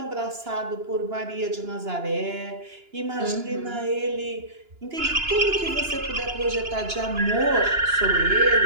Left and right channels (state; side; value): late; left; 2.9 ms